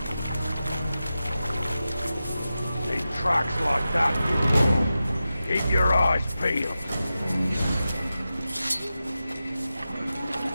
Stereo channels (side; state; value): both; inverted; correlation -0.92